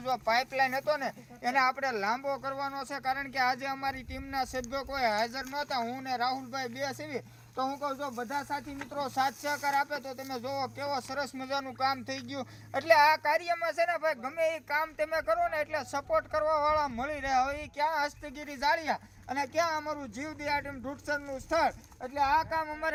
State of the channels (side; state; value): both; identical; correlation 1.00